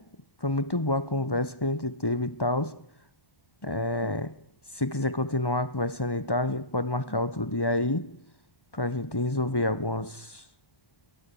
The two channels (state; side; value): late; right; 1.1 ms